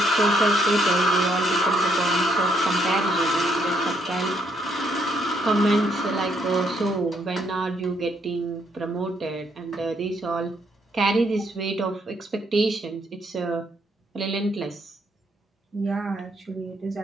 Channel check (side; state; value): both; normal; correlation 0.72